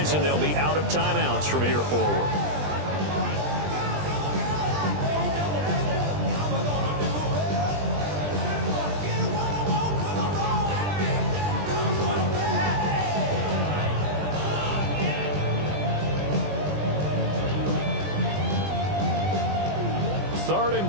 they'll be out of timeouts from here forward. Third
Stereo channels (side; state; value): left; late; 20 ms